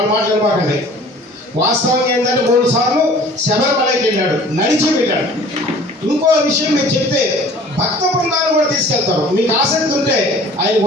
మాట్లాడుకోకండి. వాస్తవం ఏంటంటే 3 సార్లు శబరిమలైకి వెళ్ళాడు, నడిచి వెళ్ళాడు. ఇంకో విషయం మీరు చెప్తే భక్త బృందాలు కూడా తీసుకెళ్తారు. మీకు ఆసక్తి ఉంటే ఆయన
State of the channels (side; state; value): both; normal; correlation 0.48